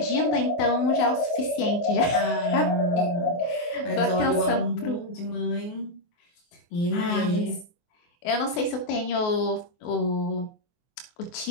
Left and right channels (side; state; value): right; late; 24 ms